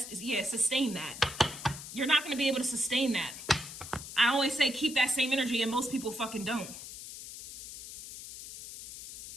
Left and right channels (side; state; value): left; noise; hiss, 12 dB below the sound